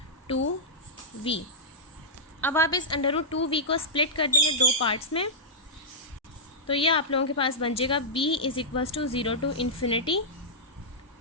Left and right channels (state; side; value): normal; both; correlation -0.12